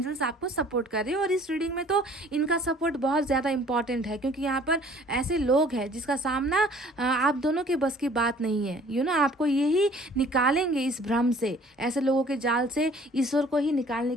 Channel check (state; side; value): normal; both; correlation 0.54